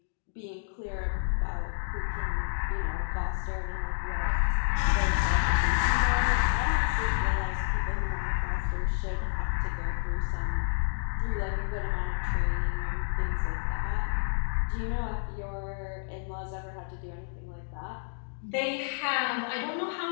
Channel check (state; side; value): silent; right; digital silence